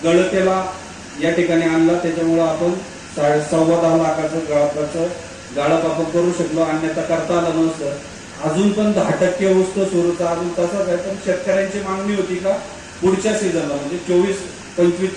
गळतेला या ठिकाणी आणला। त्याच्यामुळे आपण 10.25 लाखाचं गाळप आपण करू शकलो, अन्यथा करता आलं नसतं। अजून पण 10% ऊस तो सुरूचा अजून तसाच आहे, पण शेतकऱ्यांची मागणी होती का पुढच्या सीझनला म्हणजे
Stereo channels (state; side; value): identical; both; correlation 1.00